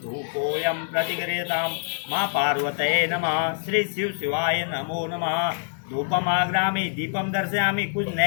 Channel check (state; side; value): silent; right; digital silence